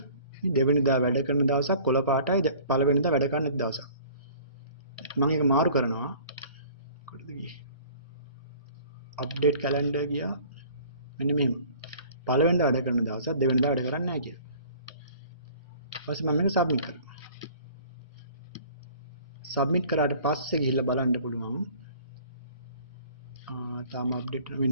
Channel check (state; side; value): inverted; both; correlation -0.49